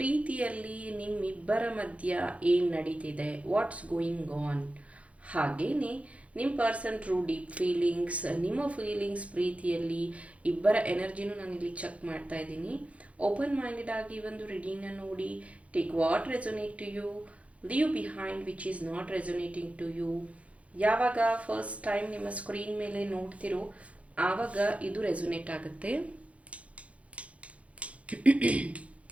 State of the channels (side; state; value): left; late; 0.064 ms